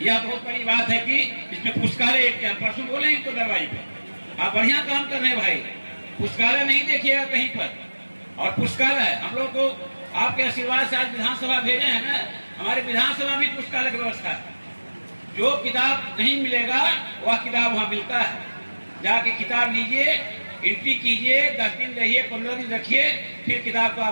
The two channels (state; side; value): inverted; both; correlation -1.00